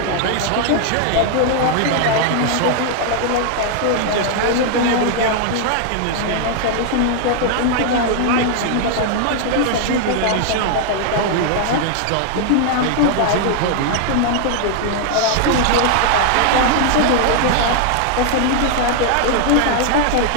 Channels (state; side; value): different; both; correlation 0.00